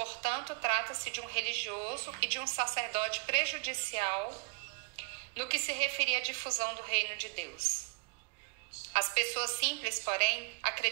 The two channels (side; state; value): left; quieter; 32.1 dB